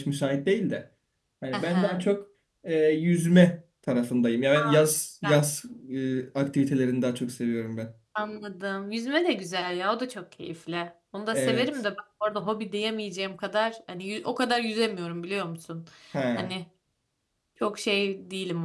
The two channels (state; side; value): identical; both; correlation 1.00